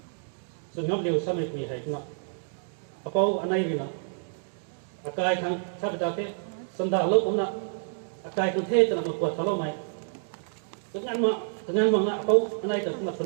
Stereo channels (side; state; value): left; silent; digital silence